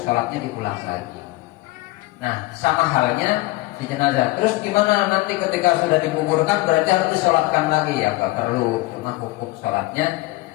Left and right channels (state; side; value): quieter; right; 20.1 dB